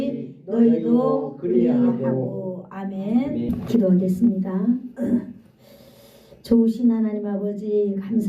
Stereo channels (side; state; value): both; identical; correlation 1.00